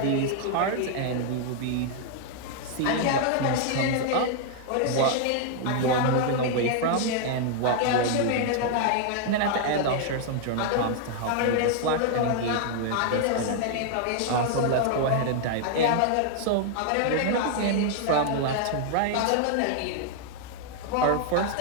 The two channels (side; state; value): both; different; correlation 0.00